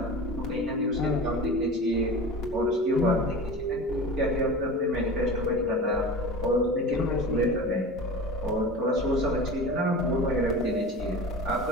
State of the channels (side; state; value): both; normal; correlation 0.33